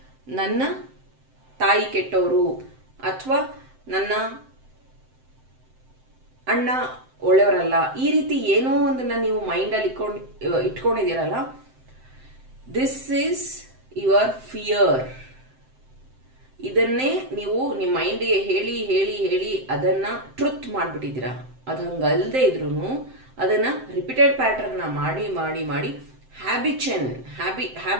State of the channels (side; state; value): left; late; 7.7 ms